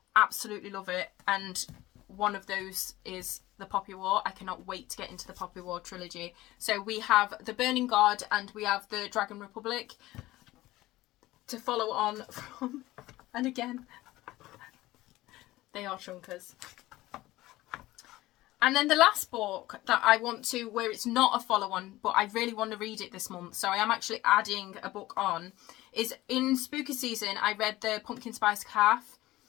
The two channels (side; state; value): right; quieter; 17.5 dB